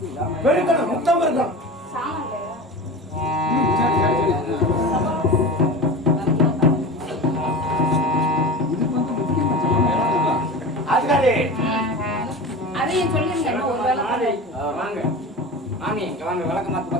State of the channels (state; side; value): normal; both; correlation 0.31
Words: வெறுக்கணும் முத்தம் இருக்கணும். சாமான் அதுக்காரி அதையும் சொல்லிருங்க. ஒரு வேலை வாங்க மாமி இங்க வாங்க. விளக்கமாத்து